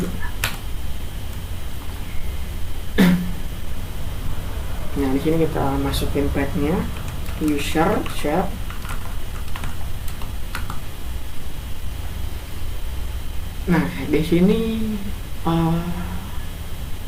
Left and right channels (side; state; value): both; identical; correlation 1.00